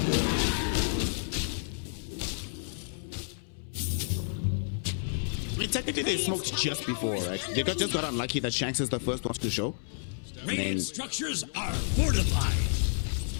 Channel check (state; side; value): silent; right; 58 dB below the other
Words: I mean, technically they smoked just before, right? They just got unlucky that Shanks is the first one to show. Radiant structures are fortified.